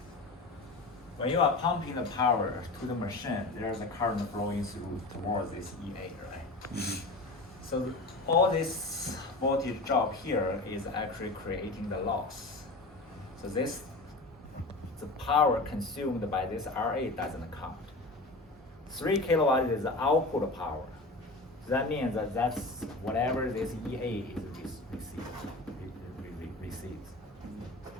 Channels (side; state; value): right; quieter; 3.0 dB